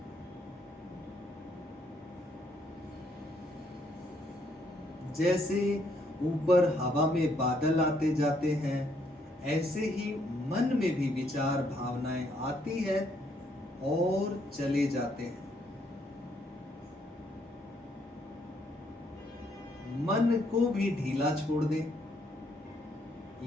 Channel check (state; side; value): normal; both; correlation 0.71